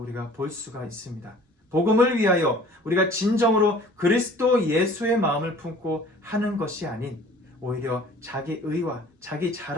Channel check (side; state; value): both; normal; correlation 0.49